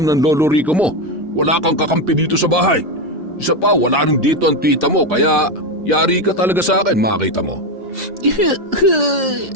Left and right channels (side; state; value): both; normal; correlation 0.11